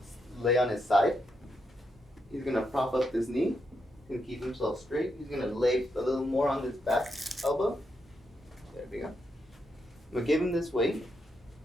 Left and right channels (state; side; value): normal; both; correlation 0.82